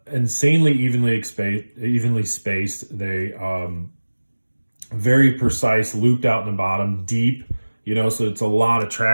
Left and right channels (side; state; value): both; inverted; correlation -1.00